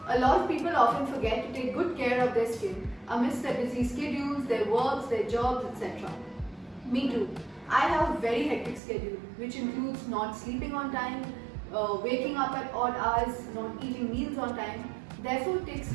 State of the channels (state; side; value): drops out; left; at 8.8 s